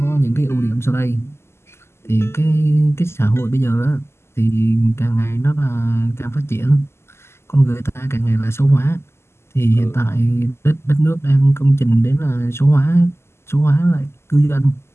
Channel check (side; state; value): right; late; 0.12 ms